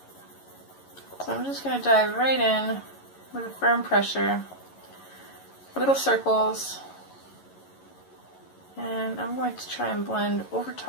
So I'm just going to dive right in with a firm pressure, little circles. And I'm going to try and blend over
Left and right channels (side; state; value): right; late; 11 ms